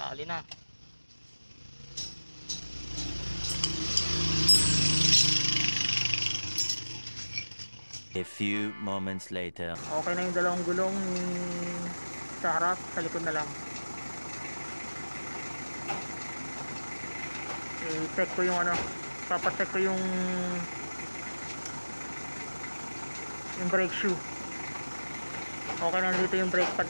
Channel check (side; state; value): both; inverted; correlation -1.00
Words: na. A few moments later. Okay na yung dalawang gulong sa harap, sa likod na lang. I-check ko yung papacheck ko yung brake shoe. Okay na dito yung brake pad